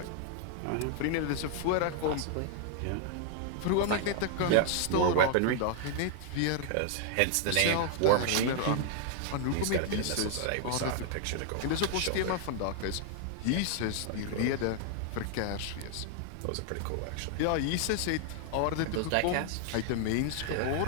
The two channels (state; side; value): different; both; correlation 0.00